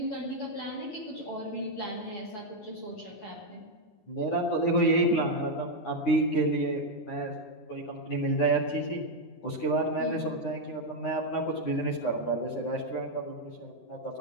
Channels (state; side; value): late; right; 9.7 ms